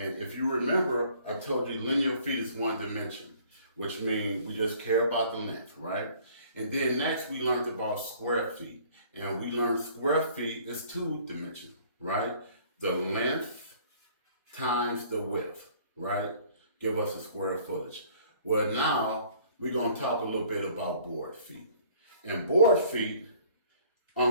if you remember, I told you linear feet is one dimension, which means we just care about the length, right? And then next, we learned about square feet. And we learned square feet is two dimensional, right? The length times the width, right? Give us a square footage. Well, now we're going to talk a little bit about board feet. And board feet,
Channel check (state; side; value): inverted; both; correlation -0.55